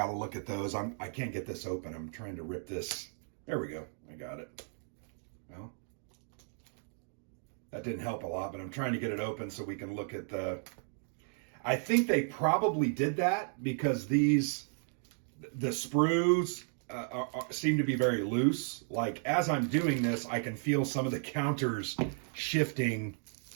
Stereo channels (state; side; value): silent; left; 55 dB below the other